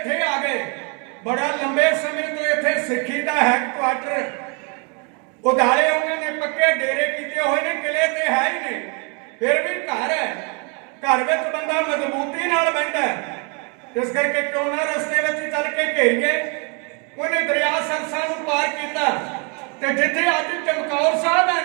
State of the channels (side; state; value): left; quieter; 35.0 dB